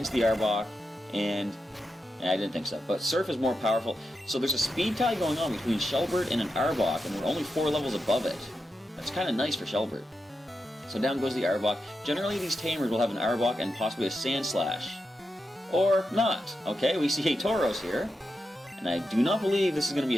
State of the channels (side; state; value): both; normal; correlation 0.88